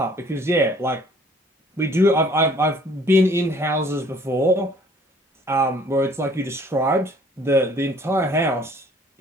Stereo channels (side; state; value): both; normal; correlation 0.56